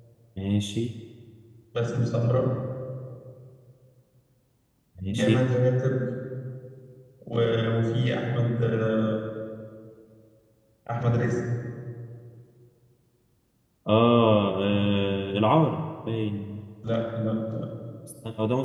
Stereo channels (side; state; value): both; identical; correlation 1.00